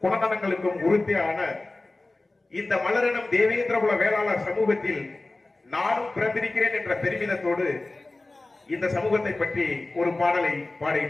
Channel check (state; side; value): quieter; right; 3.0 dB